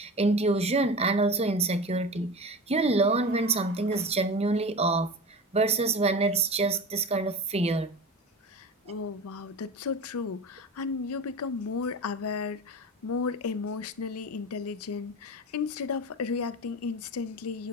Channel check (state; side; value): normal; both; correlation 0.31